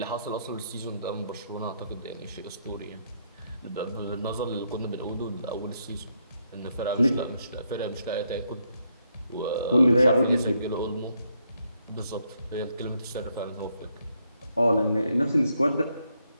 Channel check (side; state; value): both; inverted; correlation -0.76